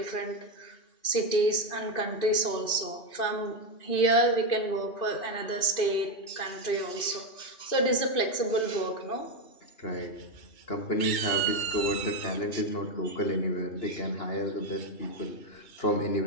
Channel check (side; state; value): right; late; 2.5 ms